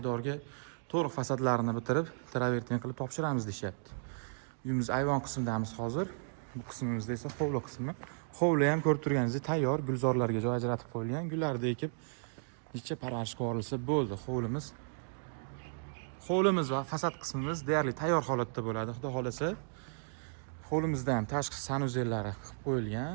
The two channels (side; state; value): left; silent; digital silence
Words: to'liq fasadlarini bitirib, travertin qilib topshiramiz deyapti. Uyimiz ayvon qismidamiz hozir. Bu qismimizda esa hovli qismi. Hovli ham ko'rib turganingizdek tayyor, gulzorlarga joy ajratib qo'yilgan. Gullarni ekib, necha parvarishga yuborilsa bo'ldi hovlimiz. Hovlimiz va fasad qismimiz deyarli tayyor holatda bo'ladi. Xudo xolasa, hovlimizda ham tashqi sanuzellari qilib